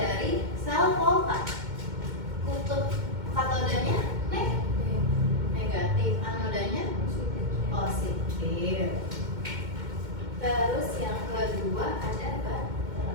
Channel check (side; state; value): left; late; 2.1 ms